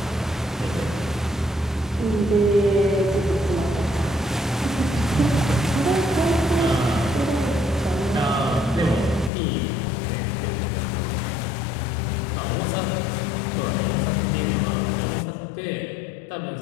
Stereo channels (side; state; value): right; drops out; at 9.3 s